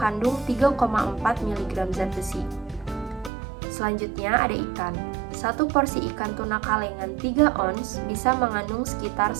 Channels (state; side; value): drops out; left; at 3.3 s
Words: 3,4 mg zat besi. Selanjutnya ada ikan. Satu porsi ikan tuna kalengan 3 ons bisa mengandung sekitar